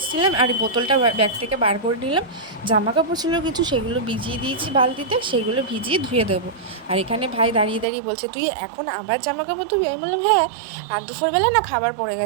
আর এই বোতলটা ব্যাগ থেকে বার করে নিলাম। জামা কাপড় ছিল কিছু, সেগুলো ভিজিয়ে দিয়েছি বালতিতে, সেগুলো ভিজিয়ে ধুয়ে দেবো। আর এখানে ভাই দাঁড়িয়ে দাঁড়িয়ে বলছে তুই এখন আবার জামা কাপড় ধুবি? আমি বললাম হ্যাঁ, আর দুপুরবেলা না খাবার পড়ে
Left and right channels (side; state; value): left; drops out; at 7.9 s